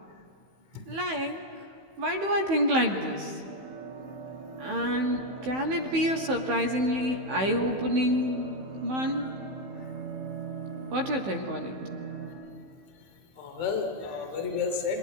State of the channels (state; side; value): late; left; 15 ms